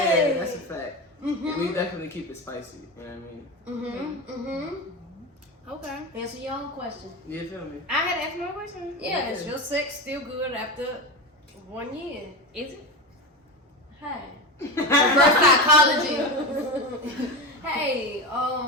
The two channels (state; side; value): normal; both; correlation 0.21